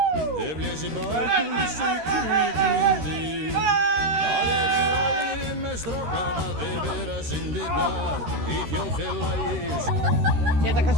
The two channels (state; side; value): late; left; 13 ms